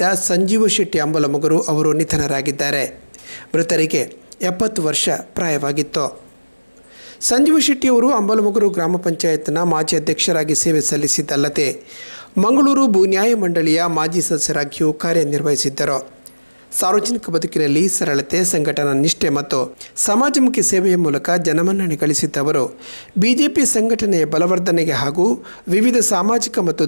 ಸಂಜೀವ ಶೆಟ್ಟಿ ಅಂಬಲಮುಗರು ಅವರು ನಿಧನರಾಗಿದ್ದಾರೆ. ಮೃತರಿಗೆ 70 ವರ್ಷ ಪ್ರಾಯವಾಗಿತ್ತು. ಸಂಜೀವ ಶೆಟ್ಟಿ ಅವರು ಅಂಬಲಮುಗರು ಗ್ರಾಮ ಪಂಚಾಯತ್ನ ಮಾಜಿ ಅಧ್ಯಕ್ಷರಾಗಿ ಸೇವೆ ಸಲ್ಲಿಸಿದ್ದಲ್ಲದೆ ಮಂಗಳೂರು ಭೂ ನ್ಯಾಯ ಮಂಡಳಿಯ ಮಾಜಿ ಸದಸ್ಯರಾಗಿಯೂ ಕಾರ್ಯನಿರ್ವಹಿಸಿದ್ದರು. ಸಾರ್ವಜನಿಕ ಬದುಕಿನಲ್ಲಿ ಸರಳತೆ, ಸಂಘಟನಾ ನಿಷ್ಠೆ ಮತ್ತು ಸಮಾಜಮುಖಿ ಸೇವೆಯ ಮೂಲಕ ಜನಮನ್ನಣೆ ಗಳಿಸಿದ್ದವರು ಬಿಜೆಪಿ ಸಂಘಟನೆಯ ಬಲವರ್ಧನೆಗೆ ಹಾಗೂ ವಿವಿಧ ಸಾಮಾಜಿಕ ಮತ್ತು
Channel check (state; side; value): inverted; both; correlation -1.00